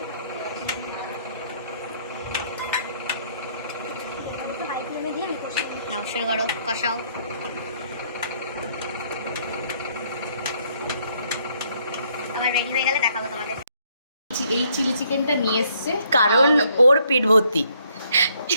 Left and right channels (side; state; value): both; inverted; correlation -0.68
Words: নাও, শুরু করো, কষাও। আমার রেডি হয়ে গেলে দেখাবো তোমাদের। এই চিলি চিকেনটা নিয়ে এসছে কারণ ওর পেট ভর্তি।